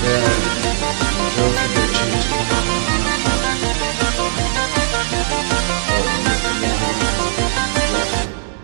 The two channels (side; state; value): left; silent; digital silence